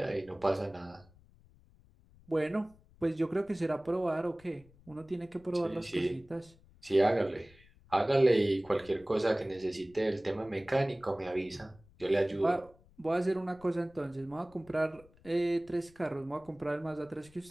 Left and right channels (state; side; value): noise; left; rumble, 27 dB below the sound